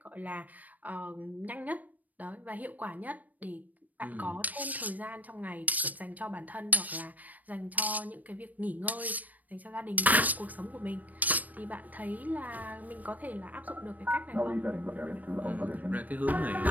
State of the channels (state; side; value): late; left; 0.079 ms